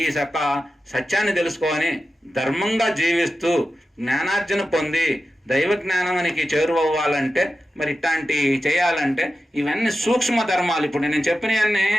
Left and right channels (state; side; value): normal; both; correlation 0.92